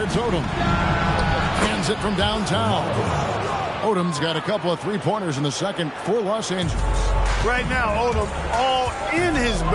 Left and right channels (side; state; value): both; identical; correlation 1.00